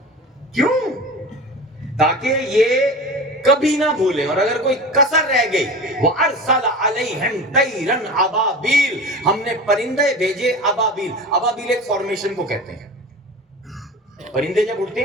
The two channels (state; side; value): normal; both; correlation 0.33